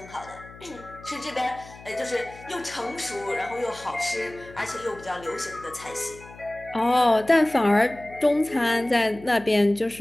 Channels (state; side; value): noise; left; hum, 19 dB below the sound